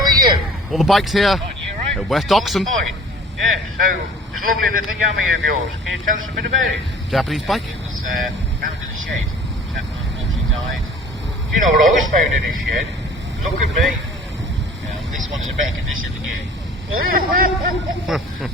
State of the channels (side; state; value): both; normal; correlation 0.47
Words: you? All the bikes here You right? at West Oxon. Fine. Yeah, so this lovely little yummy of yours. Can you tell us a bit about it? Japanese bike. It was found in a shed. Chap unfortunately died. Do you know what I was found in this shed? Look at me. Yeah, this one's in better condition than you.